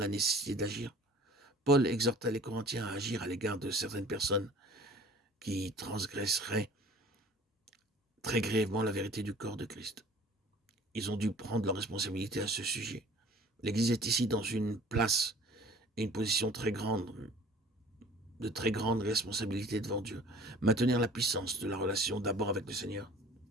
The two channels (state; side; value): normal; both; correlation 0.48